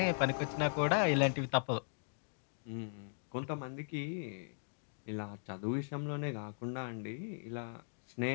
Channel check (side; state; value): right; silent; digital silence